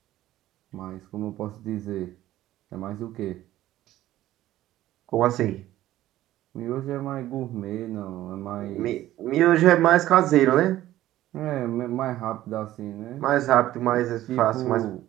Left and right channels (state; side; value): quieter; left; 14.4 dB